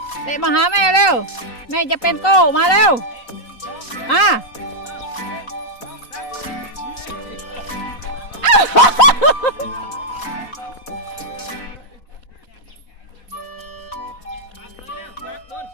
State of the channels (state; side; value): late; right; 4.1 ms